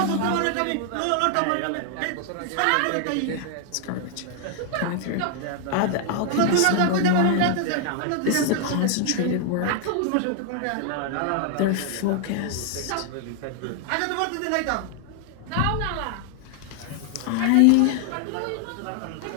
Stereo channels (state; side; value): different; both; correlation 0.00